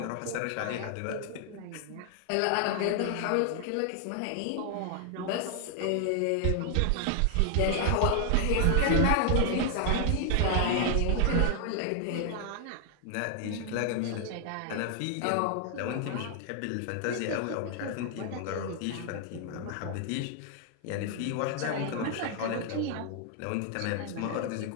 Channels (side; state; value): both; different; correlation 0.00